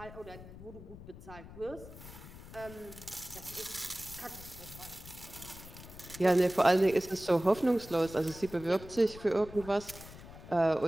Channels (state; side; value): noise; left; rumble, 15 dB below the sound